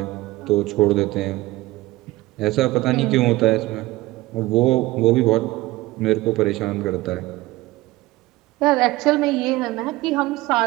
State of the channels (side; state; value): left; quieter; 18.9 dB